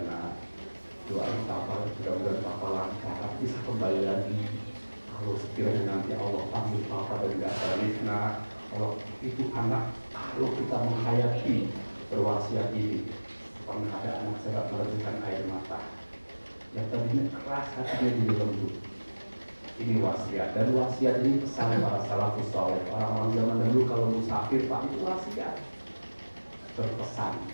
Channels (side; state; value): both; inverted; correlation -1.00